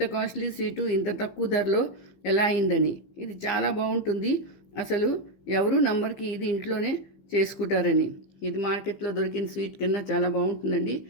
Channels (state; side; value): late; right; 15 ms